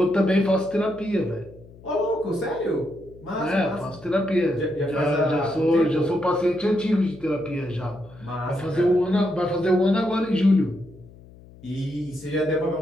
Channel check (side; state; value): left; noise; hum, 22 dB below the sound